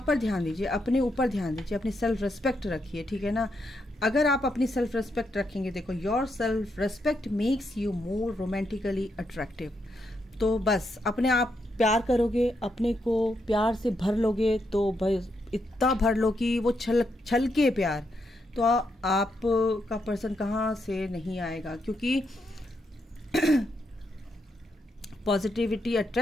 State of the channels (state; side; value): normal; both; correlation 0.80